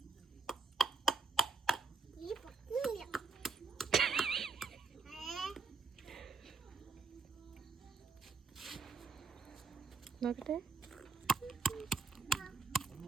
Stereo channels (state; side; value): quieter; left; 4.3 dB